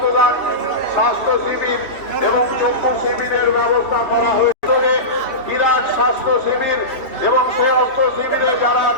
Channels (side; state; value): right; late; 3.1 ms